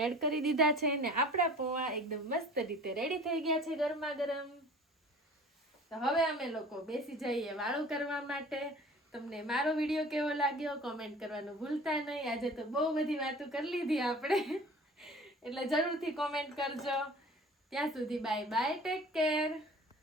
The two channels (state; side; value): normal; both; correlation 0.44